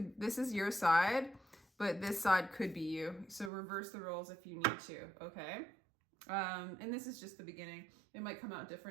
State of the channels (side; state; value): left; drops out; at 3.5 s